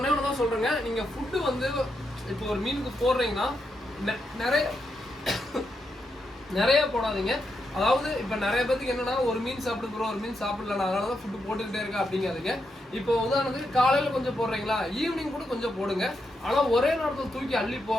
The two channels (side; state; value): both; normal; correlation 0.83